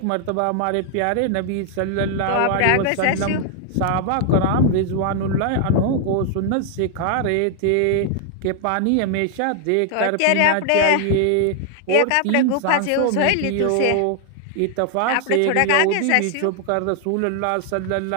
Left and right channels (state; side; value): different; both; correlation 0.00